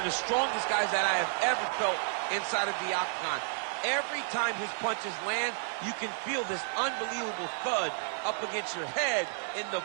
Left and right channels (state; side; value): silent; left; 57 dB below the other